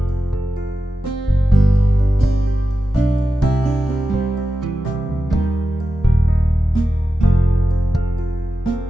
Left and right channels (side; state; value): both; normal; correlation 0.92